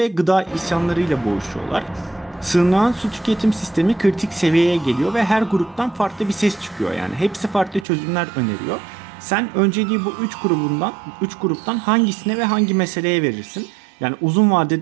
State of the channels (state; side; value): drops out; left; at 7.9 s